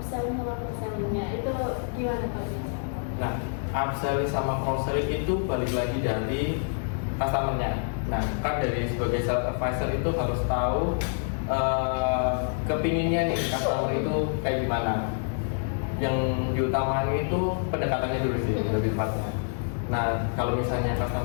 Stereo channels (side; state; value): right; silent; digital silence